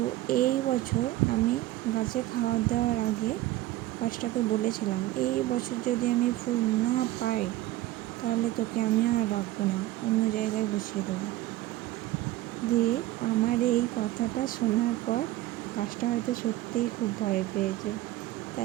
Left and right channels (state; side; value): quieter; left; 15.9 dB